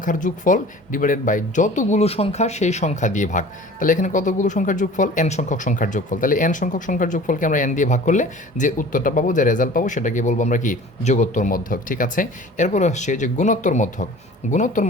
যোগফল ডিভাইডেড বাই যতগুলো সংখ্যা সেই সংখ্যা দিয়ে ভাগ। তাহলে এখানে কতগুলো সংখ্যার যোগফল? n সংখ্যক সংখ্যার যোগফল। তাহলে n সংখ্যক সংখ্যার যোগফলকে আমরা n দিয়ে ভাগ করলে যে উত্তরটা পাবো, যে রেজাল্ট পাবো, সেটাকে বলবো আমরা কি? যোগোত্তর মধ্যক। ঠিক আছে? এরপর আসছে যে গুণোত্তর মধ্যক। গুণোত্তর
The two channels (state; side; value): normal; both; correlation 0.44